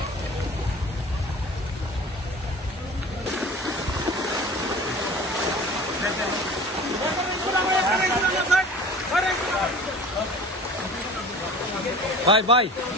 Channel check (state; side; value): normal; both; correlation 0.40